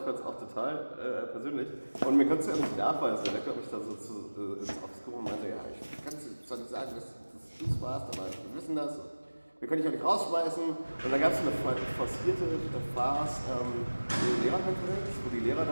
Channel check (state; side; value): inverted; both; correlation -1.00